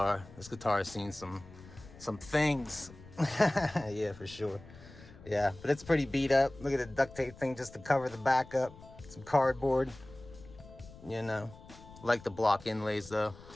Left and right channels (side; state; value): left; noise; rumble, 19 dB below the sound